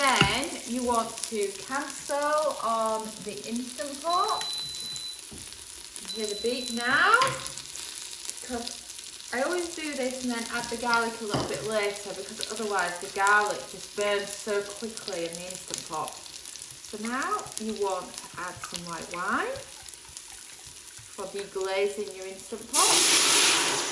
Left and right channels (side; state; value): both; identical; correlation 1.00